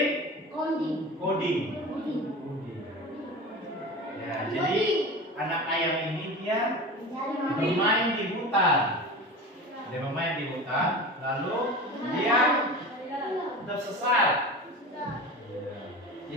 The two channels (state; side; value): normal; both; correlation 0.32